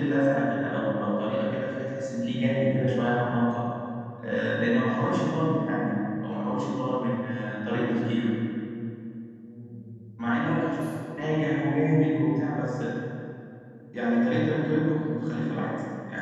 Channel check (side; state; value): both; identical; correlation 1.00